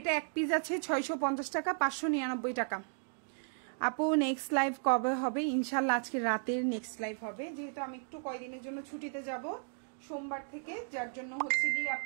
এক পিস আছে, 650 টাকা, 599 টাকা। আপু নেক্সট লাইভ কবে হবে? ইনশাল্লাহ আজকে রাতের নেক্সট লাইভ হবে, যেহেতু আমি একটু কয়দিনের জন্য ছুটিতে যাব সোমবার থেকে, যার জন্য হচ্ছে কি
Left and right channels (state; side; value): silent; left; 55 dB below the other